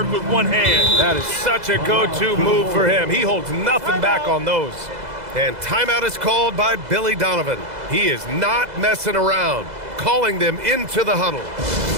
with one hand. That is such a go-to move for him. He holds nothing back on those. And timeout is called by Billy Donovan. He is not messing around, calling them into the huddle.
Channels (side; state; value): left; late; 2.0 ms